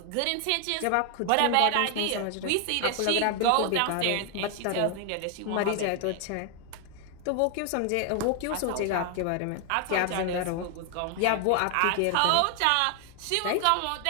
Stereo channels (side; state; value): both; different; correlation 0.00